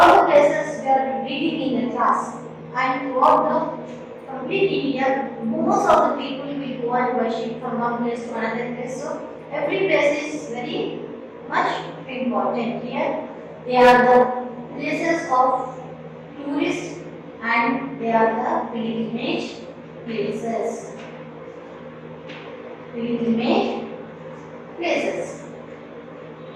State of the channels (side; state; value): both; identical; correlation 1.00